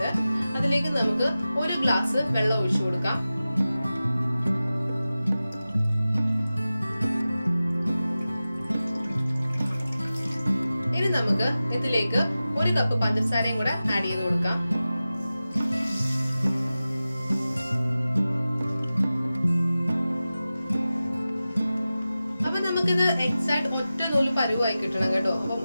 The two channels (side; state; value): both; inverted; correlation -0.95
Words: അതിലേക്ക് നമുക്ക് 1 ഗ്ലാസ് വെള്ളം ഒഴിച്ചു കൊടുക്കാം. ഇനി നമുക്ക് ഇതിലേക്ക് 1 കപ്പ് പഞ്ചസാരയും കൂടെ ആഡ് ചെയ്ത് കൊടുക്കാം. അപ്പൊ നമുക്കിത് എക്സാക്ട് ഒറ്റ നൂല് പരുവായി കിട്ടണം കേട്ടോ. അപ്പം